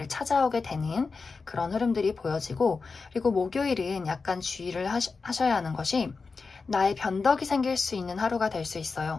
찾아오게 되는 그런 흐름들이 보여지고, 그리고 목요일은 약간 주의를 하셔야 하는 것이 나의 변덕이 생길 수 있는 하루가 될 수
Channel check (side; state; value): right; quieter; 4.5 dB